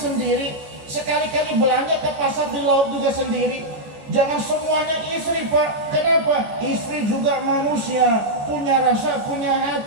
sekali-kali belanja ke pasar di laut juga sendiri. Jangan semuanya istri, Pak. Kenapa? Istri juga manusia, punya rasa, punya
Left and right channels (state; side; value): late; left; 14 ms